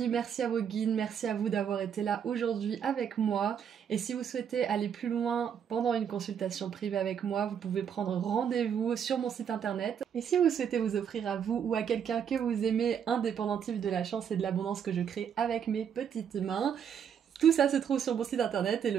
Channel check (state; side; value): quieter; left; 8.1 dB